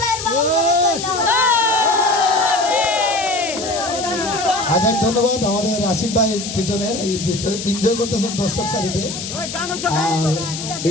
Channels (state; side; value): noise; left; hiss, 7 dB below the sound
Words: বাউল গরু চলে আচ্ছা ধন্যবাদ আমাদের আশিক ভাই পিছনে এনজয় করতেছেন দর্শক সারিতে। আর